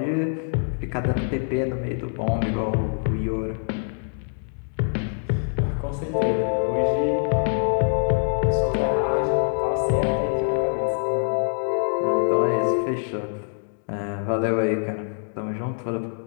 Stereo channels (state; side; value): silent; right; digital silence